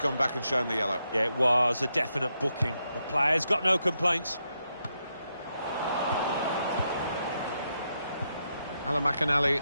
back and shown the yellow. Yeah, it was a definite booking. The player's got no complaints. Alan McInally,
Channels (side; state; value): both; inverted; correlation -0.82